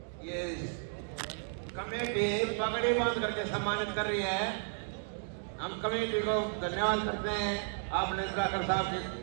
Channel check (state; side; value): silent; left; 55 dB below the other